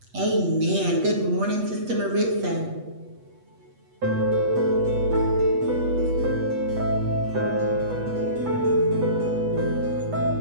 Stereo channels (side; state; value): left; late; 8.2 ms